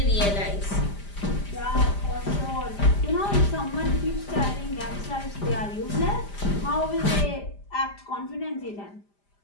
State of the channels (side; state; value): right; late; 5.0 ms